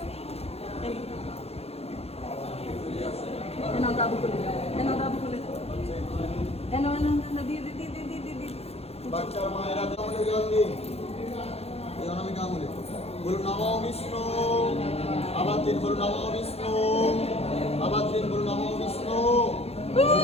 বাচ্চার মায়েরা কামলে জল দিন, এই অনামিকা আঙুলে বলুন নমো বিষ্ণু, আবার দিন বলুন নমো বিষ্ণু, আবার দিন বলুন নমো বিষ্ণু,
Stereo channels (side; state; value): right; late; 0.29 ms